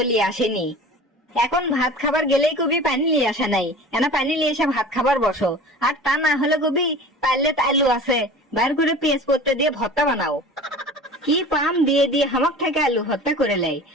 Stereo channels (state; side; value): normal; both; correlation 0.39